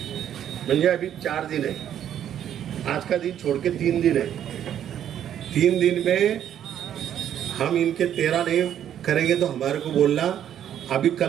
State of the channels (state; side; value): quieter; left; 10.2 dB